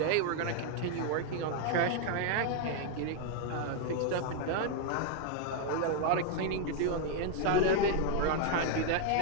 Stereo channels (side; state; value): both; different; correlation 0.00